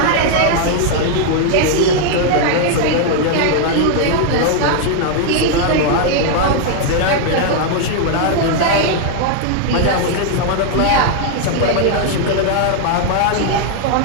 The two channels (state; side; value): different; both; correlation 0.00